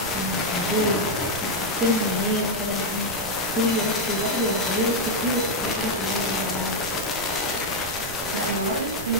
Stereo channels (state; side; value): noise; right; rumble, 12 dB below the sound